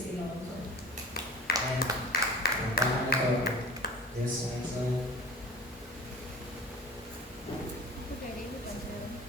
you know. So, And, paano to? Yes, so,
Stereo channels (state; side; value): normal; both; correlation 0.41